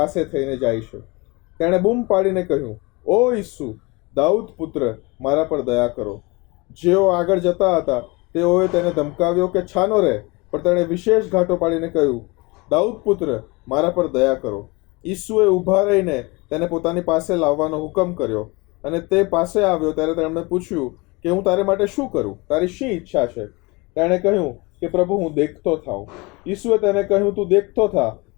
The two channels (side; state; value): right; quieter; 25.7 dB